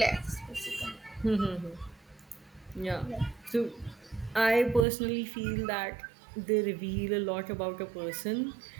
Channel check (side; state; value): left; drops out; at 4.9 s